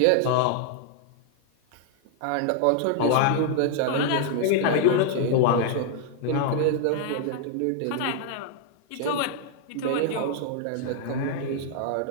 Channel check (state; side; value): different; both; correlation 0.00